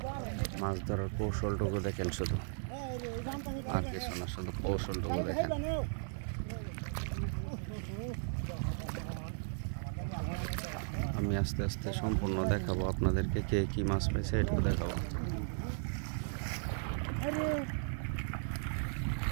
মাছ ধরার কৌশলটুকু দেখেন, শুধু আর কিছু না, শুধু কৌশলটুকু দেখেন। আমি আস্তে আস্তে সম্পূর্ণ দেখাবো আপনাদেরকে, কে কি মাছ পাইছে এটুকু দেখাবো।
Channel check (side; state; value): left; silent; digital silence